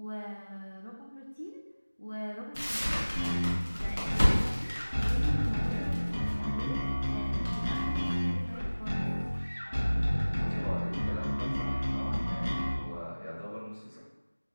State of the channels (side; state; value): both; inverted; correlation -1.00